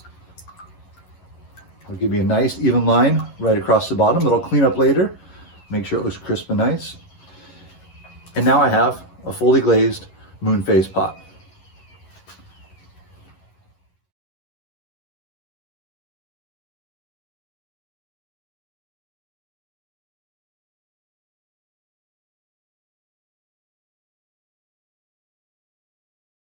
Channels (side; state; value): right; late; 11 ms